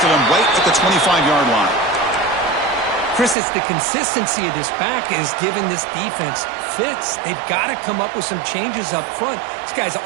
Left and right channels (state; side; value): drops out; left; at 3.4 s